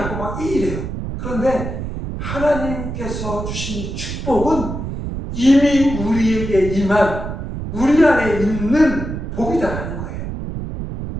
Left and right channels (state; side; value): noise; right; rumble, 6 dB below the sound